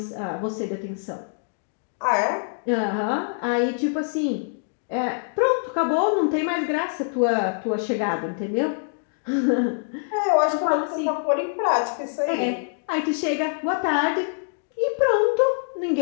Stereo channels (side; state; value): right; silent; digital silence